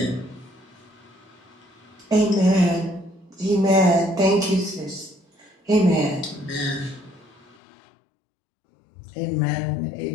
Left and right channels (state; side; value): drops out; right; at 7.6 s